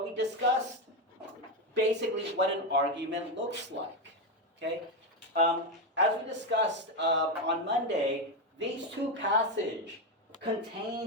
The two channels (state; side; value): normal; both; correlation 0.10